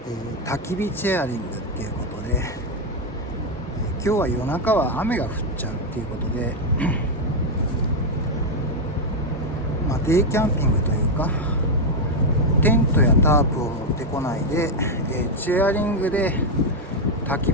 焚き火チェアリングっていうことで、今日は夜中は雨が降っちゃうっていうことでデイキャンピングというか、テントやタープを持ってこないで、チェアリングで焚き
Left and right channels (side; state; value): both; normal; correlation 0.03